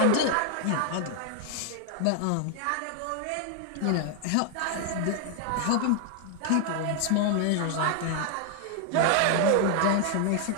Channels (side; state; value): both; different; correlation 0.00